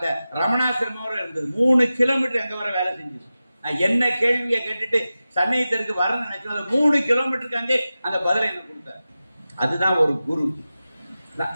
ரமணாசிரமோட இருந்தது. 3 கிலோமீட்டர் அங்க வர வேலை செஞ்சது. நான் என்ன கேள்வியை கேட்டுட்டு சன்னயத்திற்கு வரணும்னு நினைச்சோம். 3 கிலோமீட்டருக்கு அங்கே அந்த பதிலை என்ன கொடுத்தார். அதுதான் ஒரு குரு.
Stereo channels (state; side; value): inverted; both; correlation -0.94